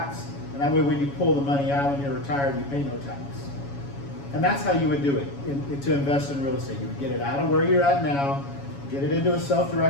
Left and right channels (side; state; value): right; late; 7.2 ms